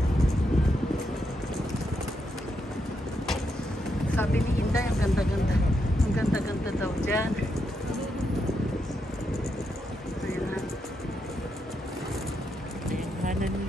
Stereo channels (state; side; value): normal; both; correlation 0.82